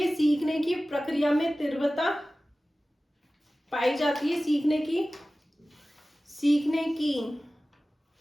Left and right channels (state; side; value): normal; both; correlation 0.96